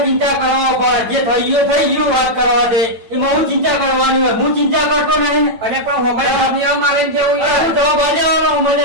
ચિંતા કરવા પડે, જે થઈ ગયું વાત કરવા દે. એમાં હું ચિંતા કરવાની હોય? હું ચિંતા કરતો નહીં. અને પણ હોમાઈ મારે જેવું હું જવાબ આલવાનો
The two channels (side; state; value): left; late; 8.9 ms